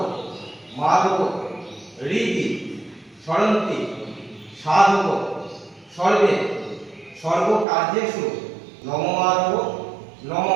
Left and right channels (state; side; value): drops out; left; at 7.7 s